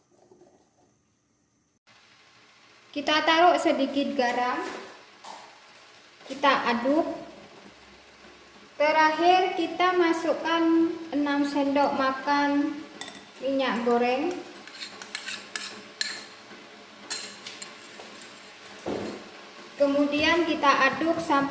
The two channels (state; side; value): identical; both; correlation 1.00